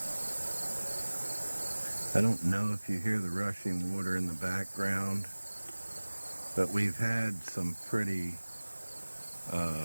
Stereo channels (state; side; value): inverted; both; correlation -1.00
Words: I don't know if you hear the rushing water in the background, but we've had some pretty